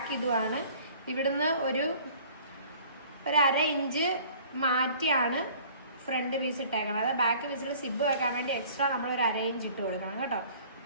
ഇതുമാണ്. ഇവിടുന്ന് ഒരു അര ഇഞ്ച് മാറ്റിയാണ് ഫ്രണ്ട് പീസ് ഇട്ടേക്കണം. അതായത് ബാക്ക് പീസിൽ സിബ് വെക്കാൻ വേണ്ടി എക്സ്ട്രാ നമ്മളൊരു അര ഇഞ്ച് ഇട്ട് കൊടുക്കണം കേട്ടോ.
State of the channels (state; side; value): inverted; both; correlation -0.51